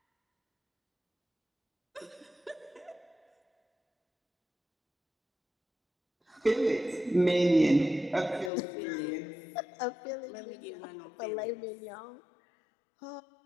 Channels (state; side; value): drops out; right; at 8.5 s